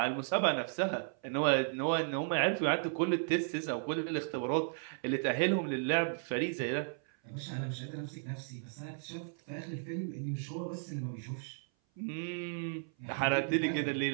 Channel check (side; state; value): left; silent; 55 dB below the other